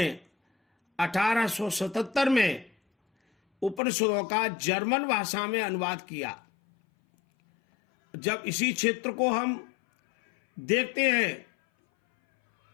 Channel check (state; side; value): drops out; right; at 3.8 s